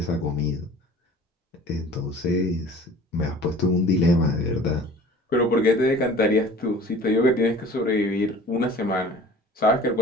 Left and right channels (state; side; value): normal; both; correlation 0.45